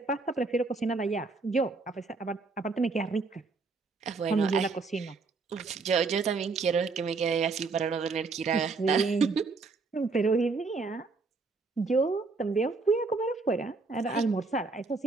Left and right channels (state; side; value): quieter; left; 4.1 dB